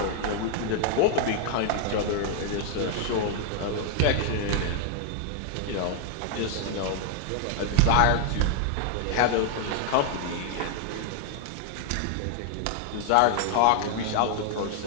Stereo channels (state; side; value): different; both; correlation 0.00